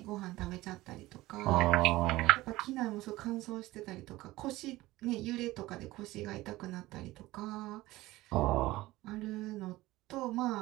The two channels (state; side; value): quieter; left; 18.3 dB